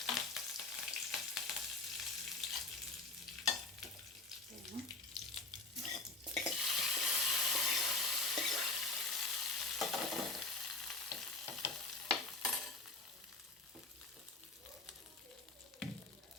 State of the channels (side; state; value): right; quieter; 3.3 dB